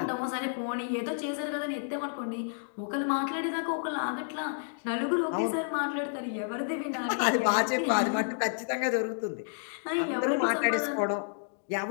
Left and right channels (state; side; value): silent; right; digital silence